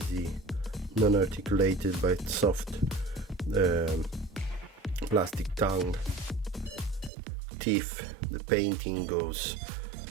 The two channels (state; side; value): drops out; left; at 7.1 s